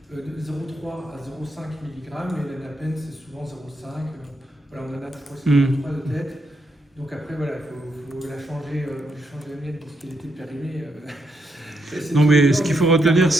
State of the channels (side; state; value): both; normal; correlation 0.80